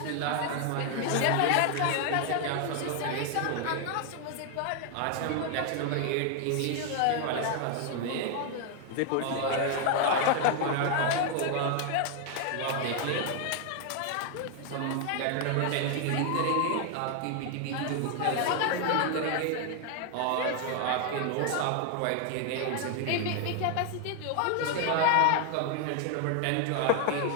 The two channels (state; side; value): different; both; correlation 0.00